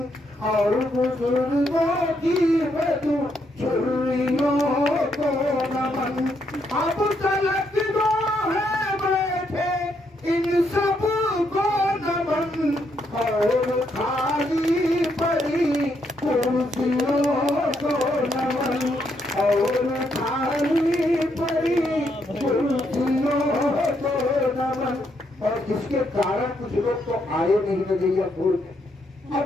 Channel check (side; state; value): both; normal; correlation 0.76